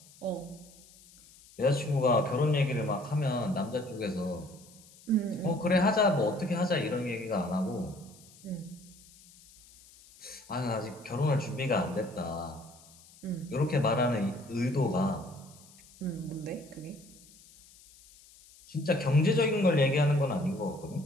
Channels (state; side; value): noise; left; hiss, 24 dB below the sound